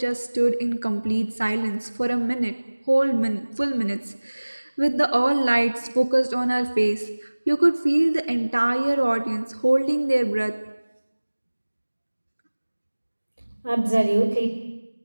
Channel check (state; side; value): inverted; both; correlation -1.00